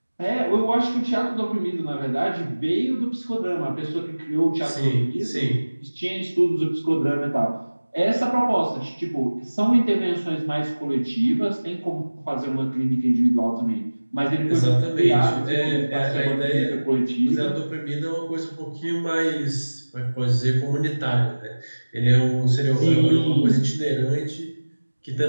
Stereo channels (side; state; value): both; inverted; correlation -1.00